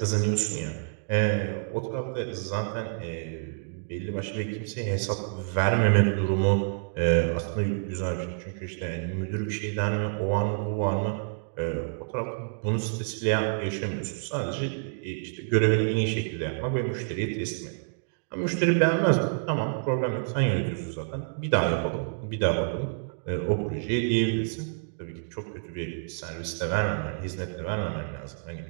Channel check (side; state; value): left; silent; digital silence